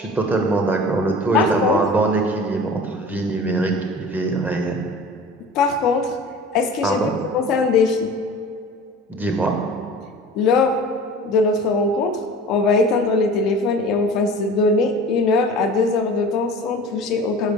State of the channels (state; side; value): normal; both; correlation 0.40